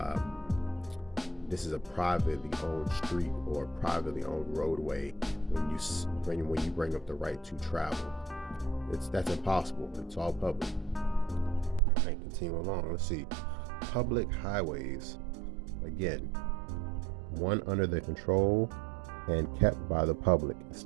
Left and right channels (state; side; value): drops out; left; at 11.8 s